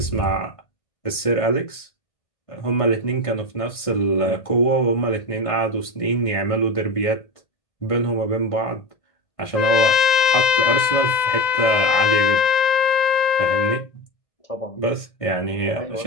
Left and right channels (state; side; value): late; right; 1.5 ms